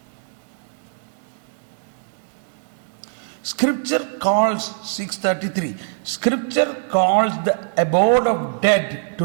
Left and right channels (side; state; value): left; silent; digital silence